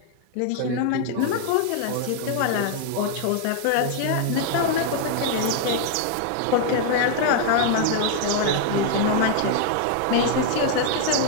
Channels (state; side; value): different; both; correlation 0.00